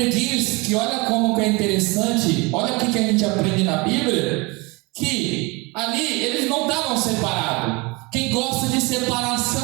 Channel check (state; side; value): quieter; left; 26.4 dB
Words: diz que olha como que é interessante, olha o que a gente aprende na Bíblia, que ali eles não estavam separados. Quem gosta de